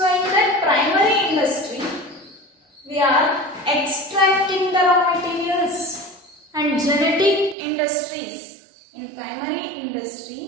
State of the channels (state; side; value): drops out; left; at 7.6 s